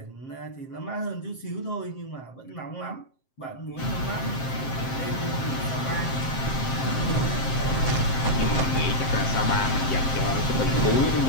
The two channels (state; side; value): late; right; 7.6 ms